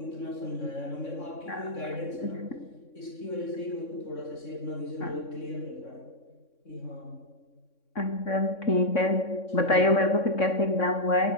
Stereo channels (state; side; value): late; right; 3.6 ms